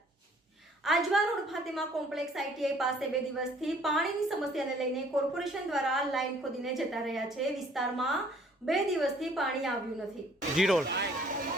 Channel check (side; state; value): both; normal; correlation 0.58